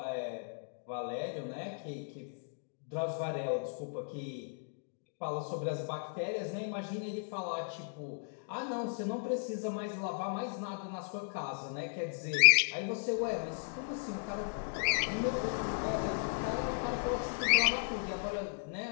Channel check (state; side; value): silent; right; digital silence